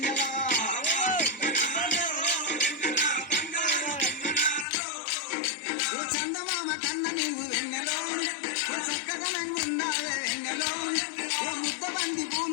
చందమామ కన్న నీవు వెన్నెలో చక్కదనంగా ఉన్నావే వెన్నెలో ముద్ద బంది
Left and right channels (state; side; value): drops out; right; at 4.7 s